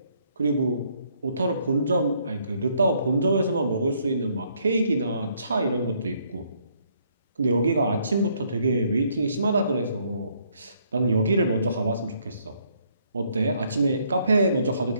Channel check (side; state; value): both; inverted; correlation -0.69